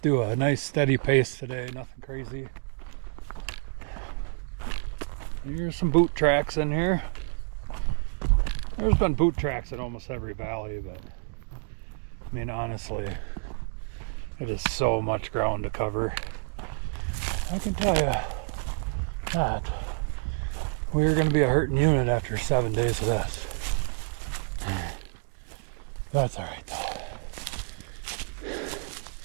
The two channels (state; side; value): silent; left; digital silence